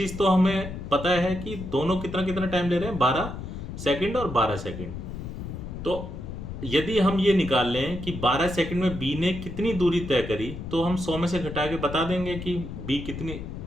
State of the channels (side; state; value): left; noise; rumble, 8 dB below the sound